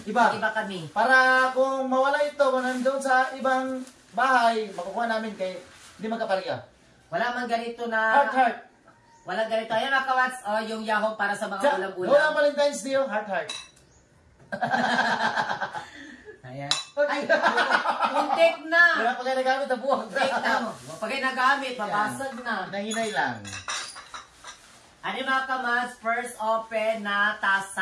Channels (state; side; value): identical; both; correlation 1.00